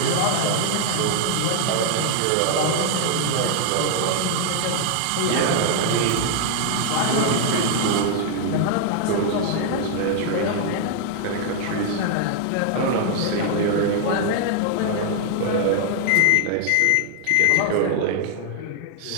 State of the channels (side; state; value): both; different; correlation 0.00